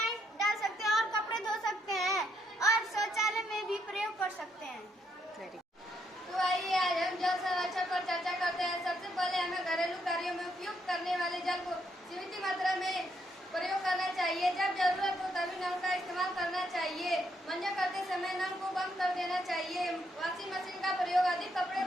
डाल सकते हैं और कपड़े धो सकते हैं और शौचालय में भी प्रयोग कर सकते हैं। तो आइए आज हम जल संरक्षण पर चर्चा करते हैं। सबसे पहले हमें घरेलू कार्यों में उपयोग करने वाले जल को सीमित मात्रा में प्रयोग करना चाहिए। जब जरूरत हो तभी नल का इस्तेमाल करना चाहिए। मंजन करते समय नल को बंद कर देना चाहिए। वॉशिंग मशीन का प्रयोग अधिक कपड़े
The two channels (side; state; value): both; normal; correlation 0.75